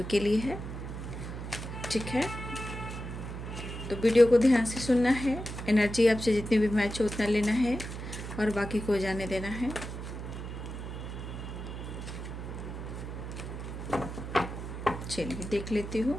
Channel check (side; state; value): right; noise; hum, 8 dB below the sound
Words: के लिए है, ठीक है। तो वीडियो को ध्यान से सुनना है। एनर्जी आपसे जितनी भी मैच हो उतना लेना है और बाकी को जाने देना है। चलिए देख लेती